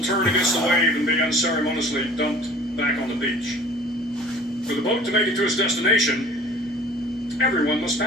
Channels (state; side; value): normal; both; correlation 0.47